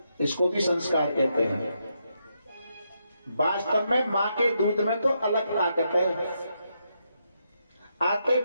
इसको भी संस्कार कहते हैं। वास्तव में मां के दूध में तो अलग ताकत है। आते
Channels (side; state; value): both; inverted; correlation -0.81